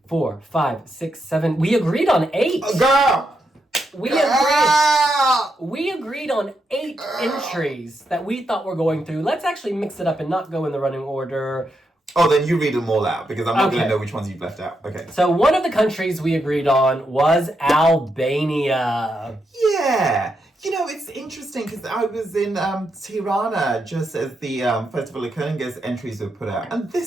4, 5, 6, 7. We agreed on 8. Girl. We agreed on 8 entries that we thought were going through. Let's actually mix it up and not go in the running order. Oh, then you read them all out because I'm not going to know which ones you've left out. Okay. So one of the countries we agreed on was Albania. Yeah. You know, it's interesting because I was in Tirana just as the Festival of Kuning's entries were put out. And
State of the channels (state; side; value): normal; both; correlation 0.83